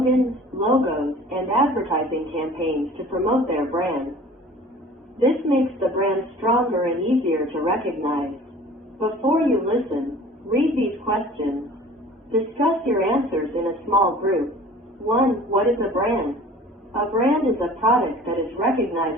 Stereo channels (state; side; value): normal; both; correlation 0.46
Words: logos, and advertising campaigns to promote their brand. This makes the brand stronger and easier to recognize. Before you listen, read these questions. Discuss your answers in a small group. 1. What is a brand? A brand is a product that is